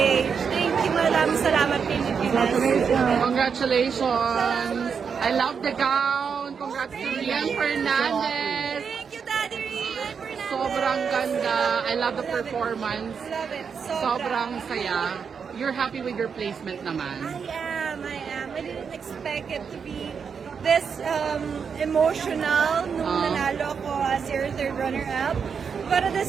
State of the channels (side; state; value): left; quieter; 6.4 dB